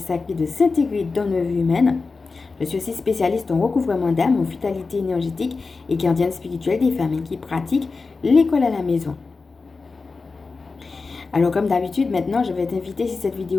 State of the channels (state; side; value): quieter; right; 4.2 dB